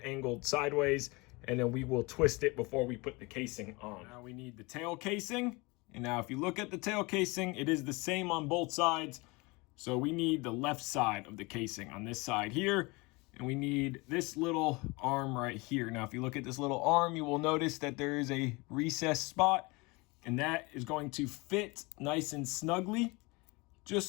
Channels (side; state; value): right; quieter; 25.7 dB